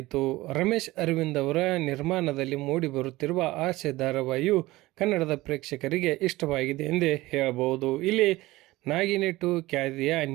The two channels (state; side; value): quieter; left; 18.8 dB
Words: ರಮೇಶ್ ಅರವಿಂದ್ ಅವರ ನಿರ್ಮಾಣದಲ್ಲಿ ಮೂಡಿ ಬರುತ್ತಿರುವ ಆಸೆ ಧಾರಾವಾಹಿಯು ಕನ್ನಡದ ಪ್ರೇಕ್ಷಕರಿಗೆ ಇಷ್ಟವಾಗಿದೆ ಎಂದೇ ಹೇಳಬಹುದು. ಇಲ್ಲಿ ನಾಗಿನೆಟ್ಟು ಖ್ಯಾತಿಯ